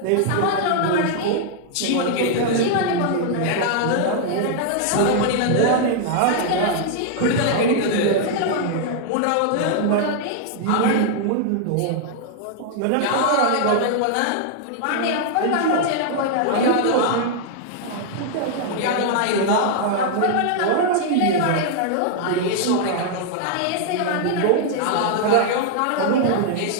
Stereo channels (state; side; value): different; both; correlation 0.00